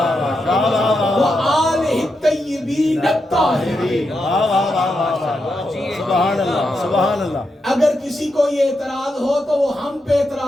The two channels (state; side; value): normal; both; correlation 0.85